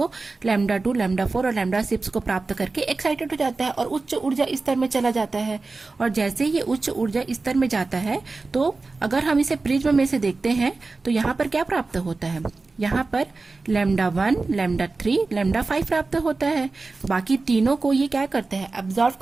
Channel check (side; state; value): left; quieter; 3.7 dB